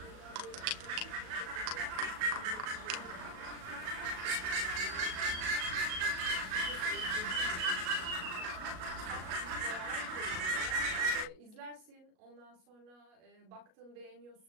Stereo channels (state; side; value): late; left; 37 ms